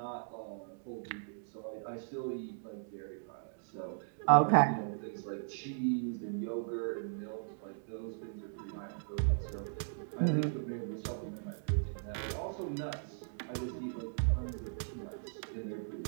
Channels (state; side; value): silent; left; digital silence